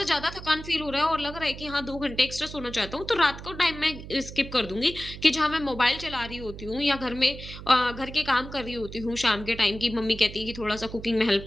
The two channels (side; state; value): right; noise; hum, 12 dB below the sound